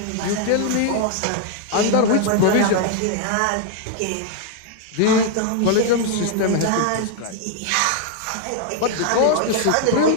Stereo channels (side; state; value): both; different; correlation 0.00